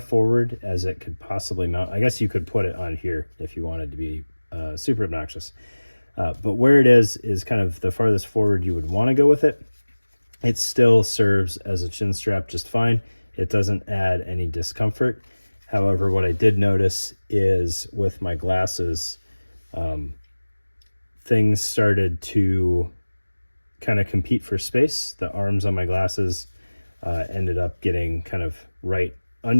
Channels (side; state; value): both; inverted; correlation -1.00